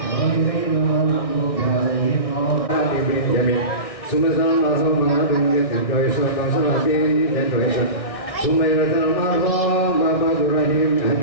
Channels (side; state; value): right; late; 1.6 ms